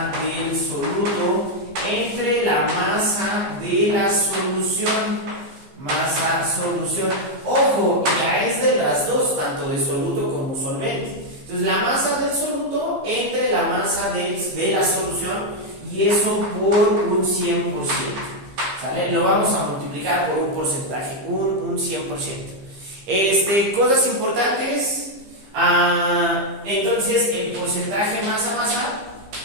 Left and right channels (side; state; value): left; late; 15 ms